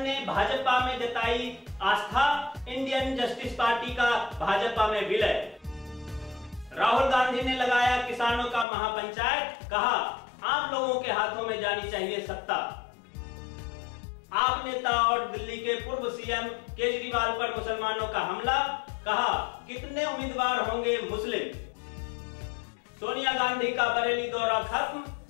ने भाजपा में जताई आस्था, इंडियन जस्टिस पार्टी का भाजपा में विलय। राहुल गांधी ने लगाया किसानों का महापंचायत, कहा आम लोगों के हाथों में जानी चाहिए सत्ता। आप नेता और दिल्ली के पूर्व सीएम केजरीवाल पर मुसलमानों का हमला, कहा कितने उम्मीदवार होंगे मुस्लिम। सोनिया गांधी का बरेली दौरा खत्म,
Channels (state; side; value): drops out; right; at 8.7 s